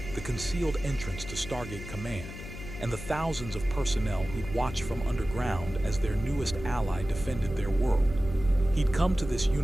the concealed entrance to Stargate Command, and the thousands of personnel who'd watched from underground as their newest ally defended their world. He'd come to this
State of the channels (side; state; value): left; noise; hum, 11 dB below the sound